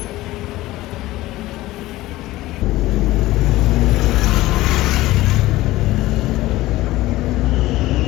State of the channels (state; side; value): quieter; right; 17.3 dB